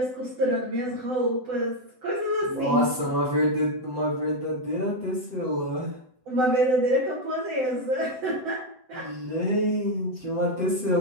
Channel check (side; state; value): left; late; 7.9 ms